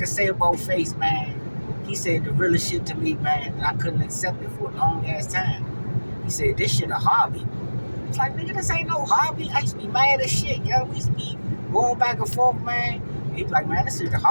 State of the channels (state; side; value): inverted; both; correlation -1.00